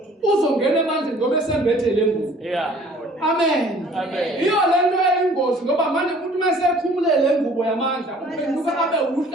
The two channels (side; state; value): both; normal; correlation 0.53